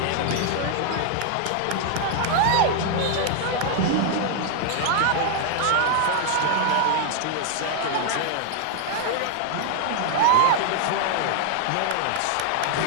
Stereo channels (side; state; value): both; different; correlation 0.00